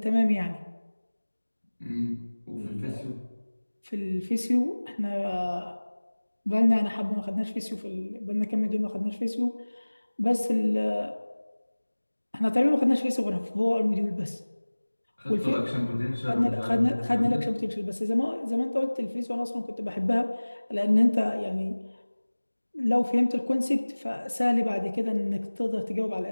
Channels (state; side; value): inverted; both; correlation -1.00